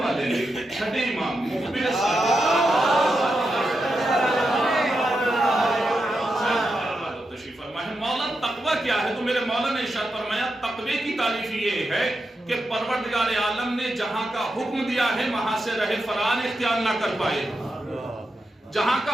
والے نے چھٹے امام مخبر مولا تقوی کیا ہے؟ تو میرے مولا نے ارشاد فرمایا تقوی کی تعریف یہ ہے کہ پروردگار عالم نے جہاں کا حکم دیا ہے وہاں سے رہ فرار اختیار نہ کر پائے، جہاں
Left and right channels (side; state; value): both; normal; correlation 0.87